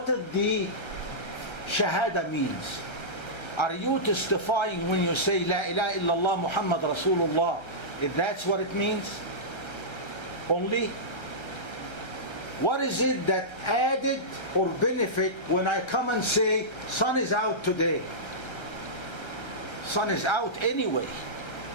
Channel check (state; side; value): late; right; 1.3 ms